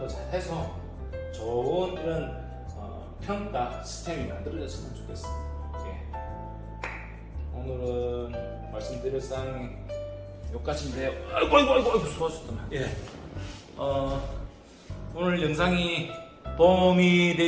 잘 해서 좋은 이런 평가 시스템이 만들어졌으면 좋겠습니다. 오늘은 말씀드릴 사항이 여기까지인데요. 아이고 수고하셨다. 오늘 영상이 도움이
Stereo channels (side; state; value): both; identical; correlation 1.00